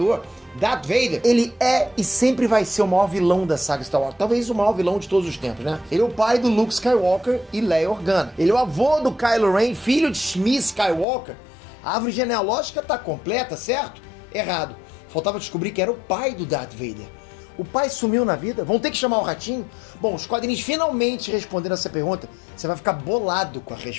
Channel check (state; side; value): drops out; right; at 11.1 s